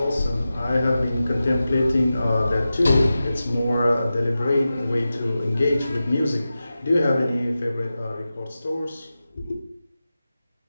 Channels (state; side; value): inverted; both; correlation -0.94